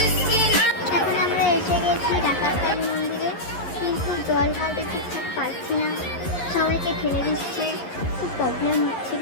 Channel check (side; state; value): right; late; 11 ms